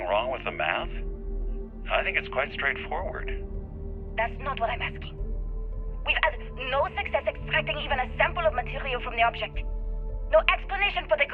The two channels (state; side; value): identical; both; correlation 1.00